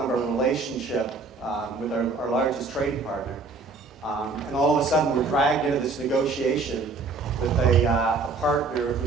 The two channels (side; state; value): left; quieter; 4.0 dB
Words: of our relationship with our largest trading partner. And all of a sudden we're dragged into this negotiation with a partner who